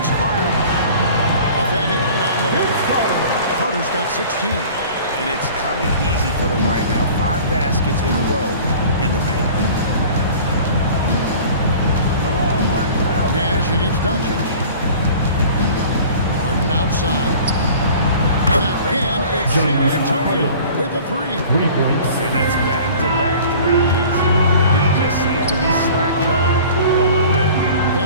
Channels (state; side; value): inverted; both; correlation -0.44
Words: Carter. Off and in on the way. Carter's got 16. And it's coming easy for them right now. 5 baskets in a row in the paint. Nash against Doncic. Harden outside. And again, it's San Antonio with a 3. 3 points. And that's back-to-back threes. The D just seems to be slacking off a little bit.